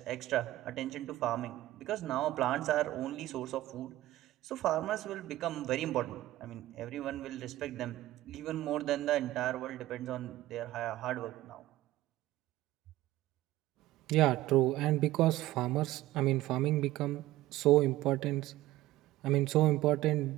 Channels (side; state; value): left; quieter; 16.0 dB